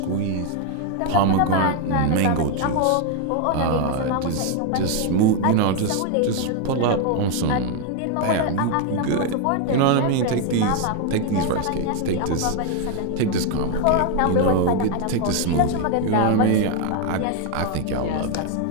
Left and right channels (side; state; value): both; different; correlation 0.01